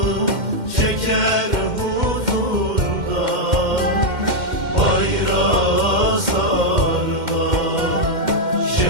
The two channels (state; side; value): late; left; 2.1 ms